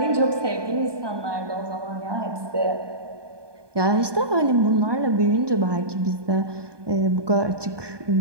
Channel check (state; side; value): late; left; 1.2 ms